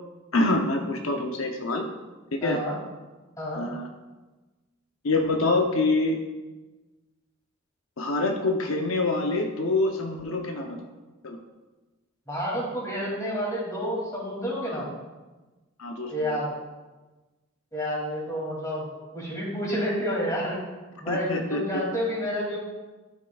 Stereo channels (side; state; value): both; normal; correlation 0.18